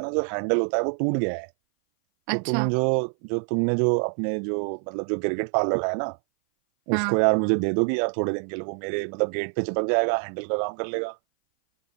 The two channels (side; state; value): left; silent; 57 dB below the other